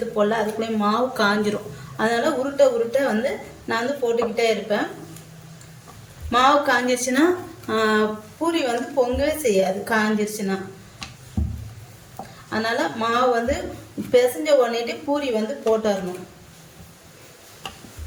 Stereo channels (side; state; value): both; identical; correlation 1.00